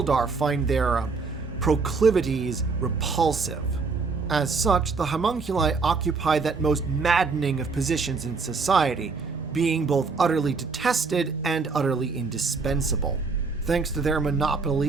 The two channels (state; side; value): quieter; left; 4.5 dB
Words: find their proclivities repulsive. As such, the homunculi occupy that most maddening of positions in society, being both utterly detested and utterly indispensable. Thanks to their